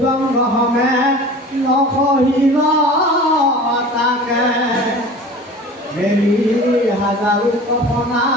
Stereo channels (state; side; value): normal; both; correlation 0.40